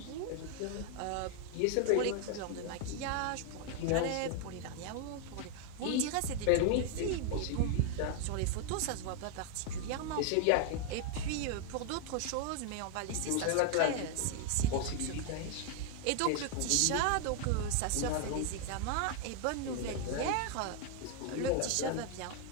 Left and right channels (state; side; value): different; both; correlation 0.00